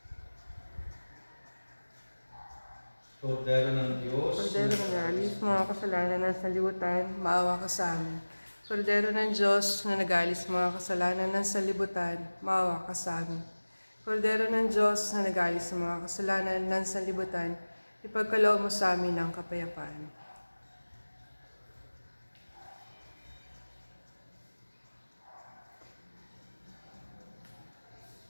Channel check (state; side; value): inverted; both; correlation -1.00